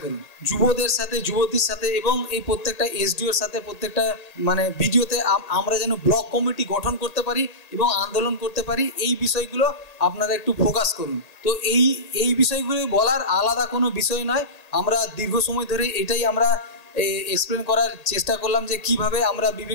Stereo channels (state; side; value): late; right; 1.8 ms